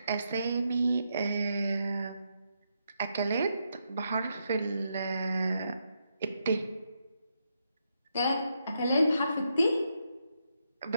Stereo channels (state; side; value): inverted; both; correlation -0.81